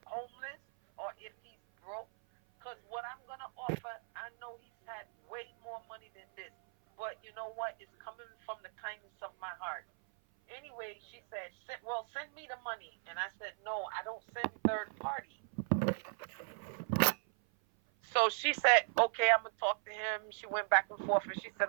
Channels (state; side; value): silent; left; 53 dB below the other